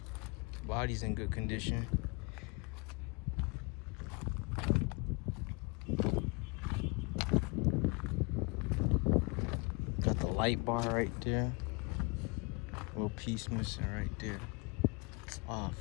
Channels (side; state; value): right; quieter; 28.9 dB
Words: Body's in good condition. Got the light bar right there. Little piece missing right there. Ah,